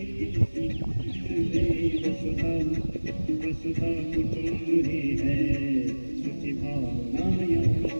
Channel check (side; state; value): both; inverted; correlation -1.00